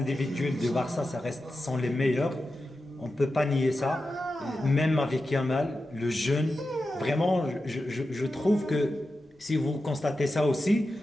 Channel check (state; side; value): normal; both; correlation 0.91